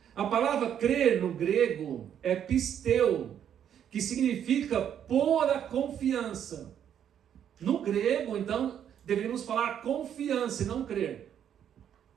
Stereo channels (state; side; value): quieter; left; 9.3 dB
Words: A palavra crer no grego é pisteu, que significa pôr a confiança. No grego, então, deveríamos falar confiança e não crer.